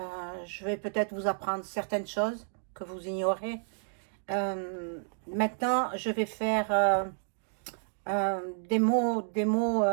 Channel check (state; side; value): silent; left; digital silence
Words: Je vais peut-être vous apprendre certaines choses que vous ignorez. Maintenant, je vais faire des mots